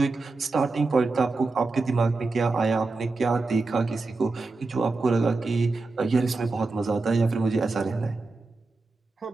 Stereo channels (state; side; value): quieter; left; 3.6 dB